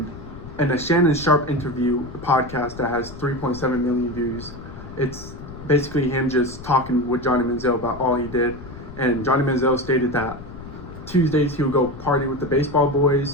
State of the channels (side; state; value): left; noise; rumble, 14 dB below the sound